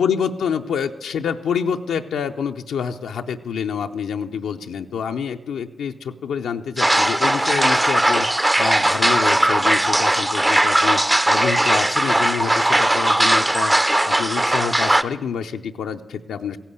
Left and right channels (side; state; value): both; normal; correlation 0.91